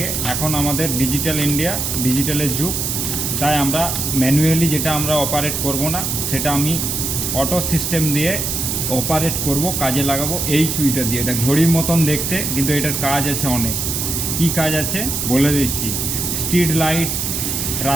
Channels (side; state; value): right; noise; hiss, 1 dB below the sound